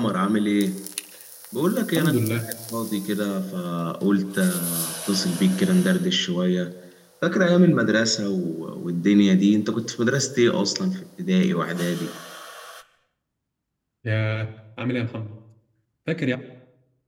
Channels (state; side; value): identical; both; correlation 1.00